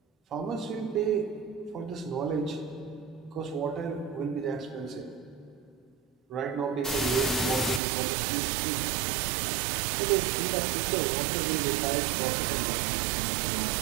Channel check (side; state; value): left; drops out; at 7.8 s